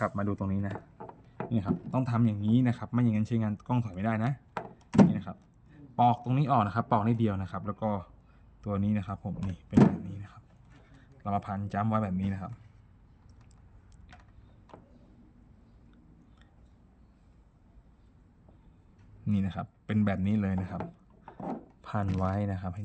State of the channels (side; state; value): both; identical; correlation 1.00